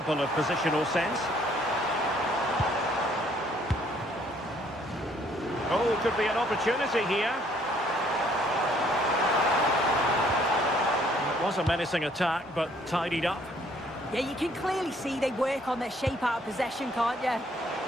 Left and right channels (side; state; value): both; normal; correlation 0.63